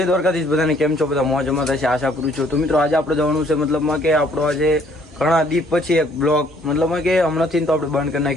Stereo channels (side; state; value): both; normal; correlation 0.62